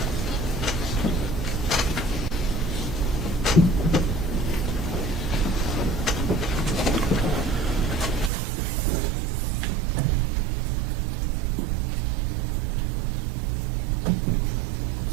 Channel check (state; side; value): drops out; left; at 8.3 s